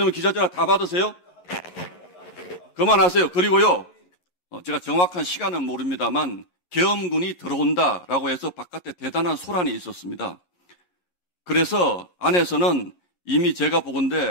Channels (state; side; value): late; right; 11 ms